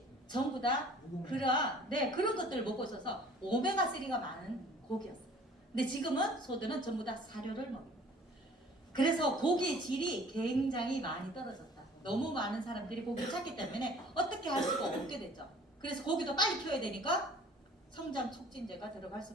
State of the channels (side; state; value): both; normal; correlation 0.51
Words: 전부 다 그런 것들을 먹고 있어서 오메가3가 많은 고기였어요. 근데 지금은 소들은 전부 다 사료를 먹어요. 그래서 고기의 질이 굉장히 많이 떨어졌다. 너무 많은 사람들이 고기를 찾기 때문에 어떻게 할 수가 없게 됐죠. 그래서 고기도 빨리 키워야 되니까 성장 촉진제가 들어갈